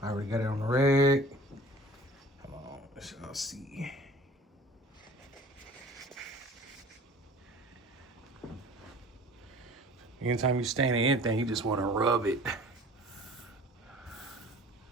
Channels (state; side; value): normal; both; correlation 0.46